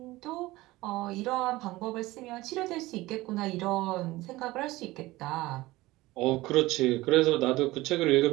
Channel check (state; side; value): quieter; left; 19.0 dB